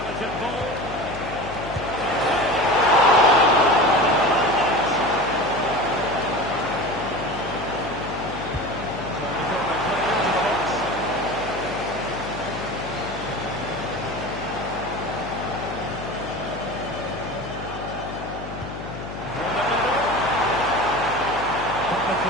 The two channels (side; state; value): left; noise; hum, 10 dB below the sound